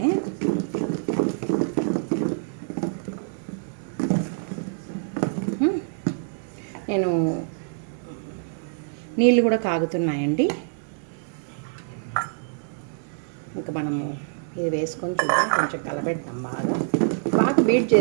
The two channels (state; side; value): silent; left; digital silence